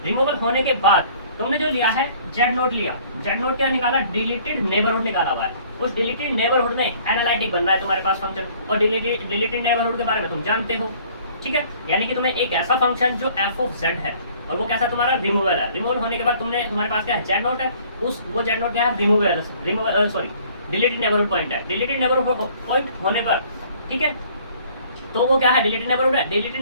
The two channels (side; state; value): both; inverted; correlation -0.56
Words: रिमूवल होने के बाद तुमने जो लिया है जेड नोड लिया, जेड नोड क्या निकाला? डिलीटेड नेबरहुड निकाला हुआ है। उस डिलीटेड नेबरहुड में एनालिटिक बन रहा है तुम्हारे पास फंक्शन, और डिलीटेड नेबरहुड के बारे में तुम जानते हो। ठीक है, यानी कि तुम्हें एक ऐसा फंक्शन जो एफ ऑफ जेड है और वो कैसा तुम्हारा? रिमूवल है। रिमूवल होने के बाद तुम्हारे पास क्या है? जेड नोट है, उस वो जेड नोट क्या है? Removal sorry deleted neighbourhood point है। डिलीटेड नेबरहुड पॉइंट होने पर, ठीक है, तो वो क्या है? डिलीटेड नेबरहुड है। डिलीटेड